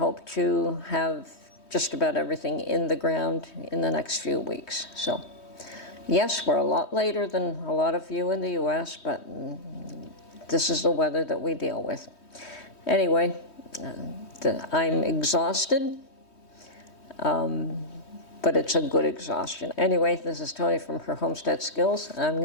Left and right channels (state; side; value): late; right; 3.2 ms